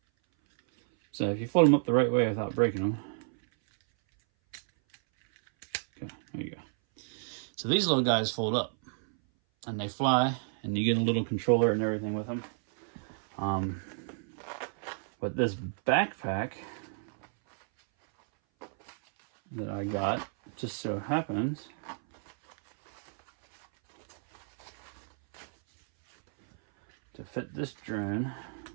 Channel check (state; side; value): silent; left; 57 dB below the other